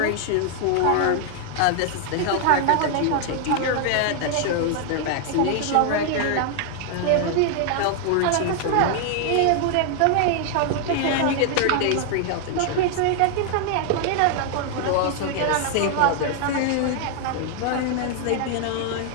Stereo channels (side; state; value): both; different; correlation 0.00